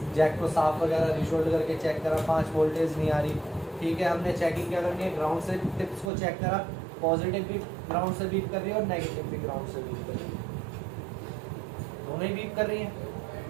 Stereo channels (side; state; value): left; drops out; at 6.1 s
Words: जैक को साफ वगैरह रिशोल्ड करके चेक करा, 5 वोल्टेज नहीं आ रही, ठीक है। हमने चेकिंग क्या करनी है, ग्राउंड से टिप्स को चेक करा, पॉजिटिव भी ग्राउंड से बीप कर रही है और नेगेटिव भी ग्राउंड से बीप कर रही है, दोनों ही बीप कर रही है।